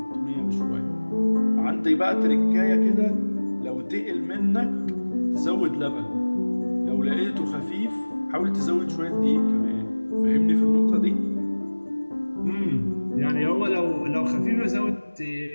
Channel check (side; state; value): both; inverted; correlation -1.00